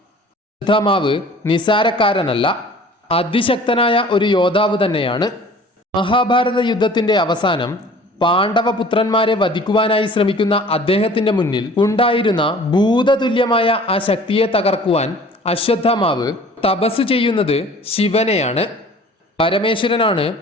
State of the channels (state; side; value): normal; both; correlation 0.48